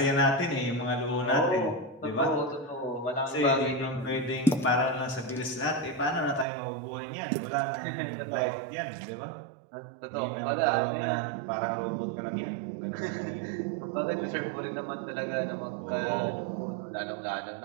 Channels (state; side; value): drops out; left; at 6.5 s